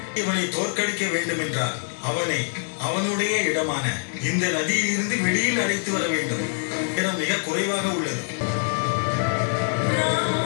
இவனை தோற்கடிக்க வேண்டும் என்றால் அவனை அவனுடைய இடமான இந்த நதியில் இருந்து வெளியில் அழைத்து வர வேண்டும். இடம் மிக குறைவாக உள்ளது.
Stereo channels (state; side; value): silent; right; digital silence